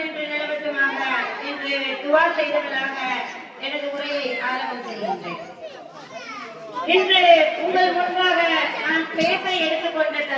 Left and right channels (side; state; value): both; identical; correlation 1.00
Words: நிலவட்டுமாக என்று துஆ செய்தவர்களாக எனது உரையை ஆரம்பம் செய்கின்றேன். இன்று உங்கள் முன்பாக நான் பேச எடுத்துக்கொண்ட